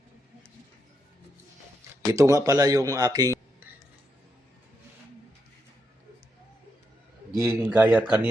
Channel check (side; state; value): both; normal; correlation 0.82